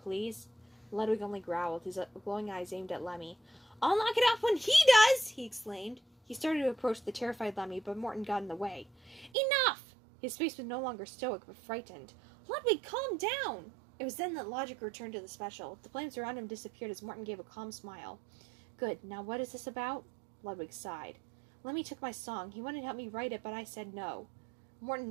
Ludwig only growled, his glowing eyes aimed at Lemmy. "I'll knock it off when he does!" he exclaimed. He started to approach the terrified Lemmy, but Morton got in the way. "Enough!" His face was no longer stoic, but frightened. "Ludwig, calm down!" It was then that logic returned to the special. The flames around him disappeared as Morton gave a calm smile. "Good. Now what is this about?" Ludwig sighed. "Lemmy took my song. He wanted to help me write it, but I said no." Morton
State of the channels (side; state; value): left; drops out; at 9.3 s